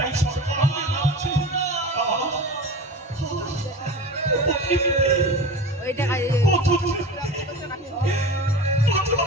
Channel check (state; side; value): normal; both; correlation 0.32